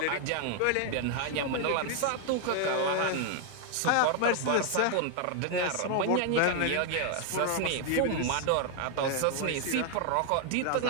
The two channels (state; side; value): different; both; correlation 0.00